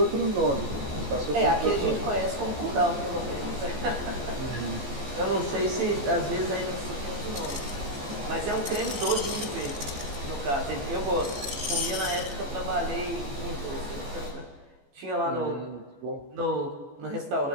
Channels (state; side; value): late; left; 14 ms